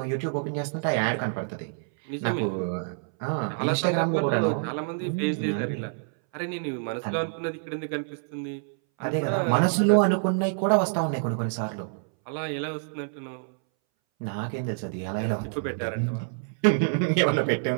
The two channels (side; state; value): left; silent; 60 dB below the other